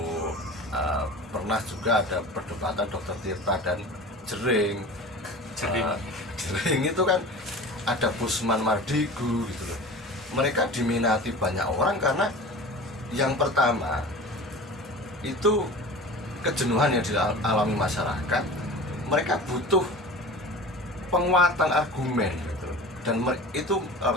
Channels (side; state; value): both; normal; correlation 0.37